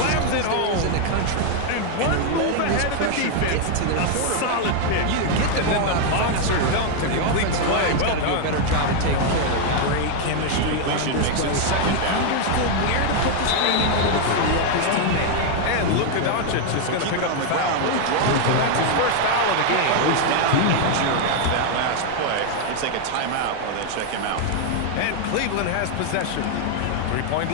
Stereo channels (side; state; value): both; different; correlation 0.00